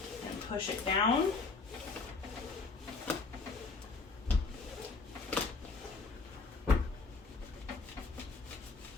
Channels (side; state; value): right; quieter; 4.1 dB